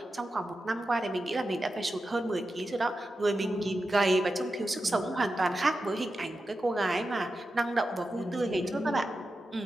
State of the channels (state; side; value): normal; both; correlation 0.91